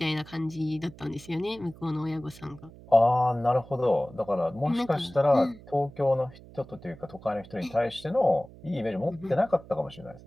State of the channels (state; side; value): noise; right; hum, 20 dB below the sound